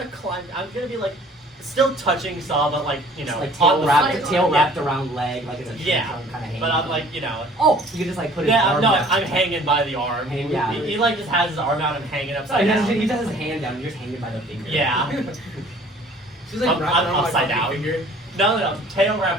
climb. I'm gonna be like still touching Saw, but like you know, like on the tail front. wrapped around leg, like it's a Yeah, kind of hanging. but I'm like you know. Oh, you can just like put his Yeah, arm no, down. I'm hanging by the arm. Yeah. He like just has his arm out and hanging So upside he down. just has his hand down. You're just hanging by the finger. Yeah. She's like wrapped I'm around my upside fucking down. finger. No, tail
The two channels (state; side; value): normal; both; correlation 0.52